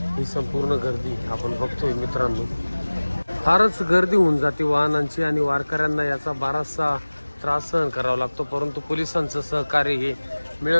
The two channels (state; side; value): inverted; both; correlation -1.00